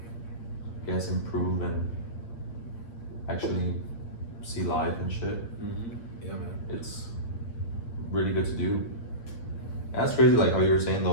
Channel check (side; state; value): right; late; 8.6 ms